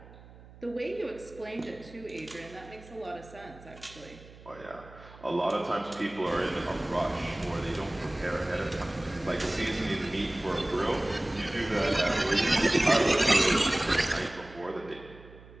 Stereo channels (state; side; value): noise; right; hum, 20 dB below the sound